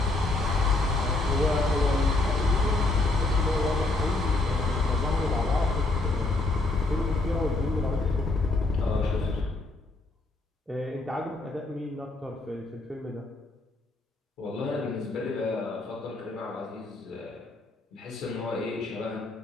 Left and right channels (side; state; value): right; quieter; 3.0 dB